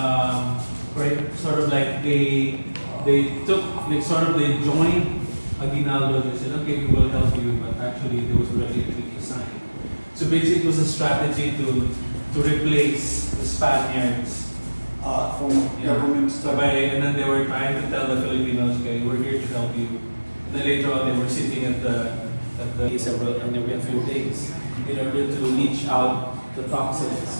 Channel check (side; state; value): both; inverted; correlation -1.00